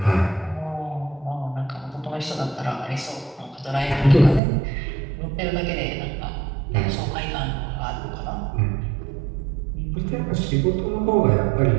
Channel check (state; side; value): drops out; left; at 4.4 s